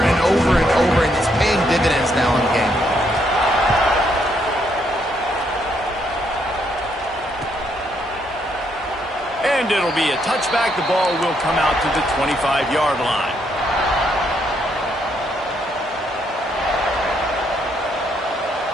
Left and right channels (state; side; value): normal; both; correlation 0.74